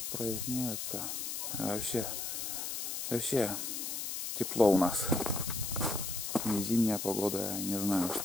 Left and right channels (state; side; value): noise; left; hiss, 3 dB below the sound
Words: А вообще тепло у нас. Не зимняя погода, я не знаю,